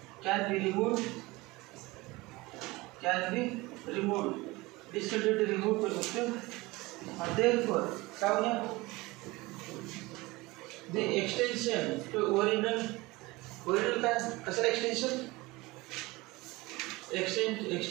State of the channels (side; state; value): left; quieter; 21.8 dB